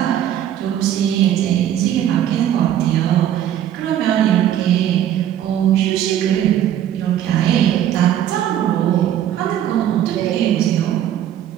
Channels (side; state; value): left; quieter; 11.0 dB